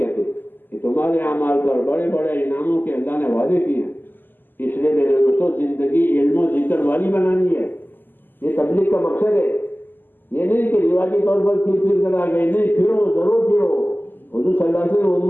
ہیں کہ تمہارے اعمال پر بڑے بڑے انعاموں کے اللہ نے وعدے کیے ہیں۔ اس لیے میرے دوستوں زندگی علم و ذکر والی بنانی ہے۔ یہ تبلیغ کا مقصد ہے، یہ نہیں کہ رواجی طور پر پھر کر آ گئے، نہیں، پھرو ضرور پھرو۔ حضور صلی اللہ علیہ وسلم نے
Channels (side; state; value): right; late; 0.091 ms